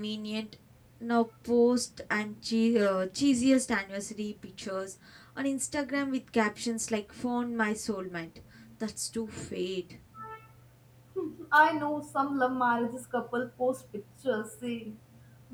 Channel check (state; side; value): identical; both; correlation 1.00